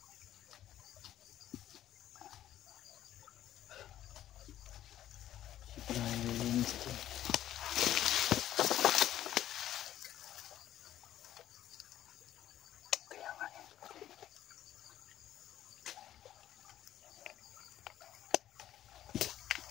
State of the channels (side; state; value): right; quieter; 12.3 dB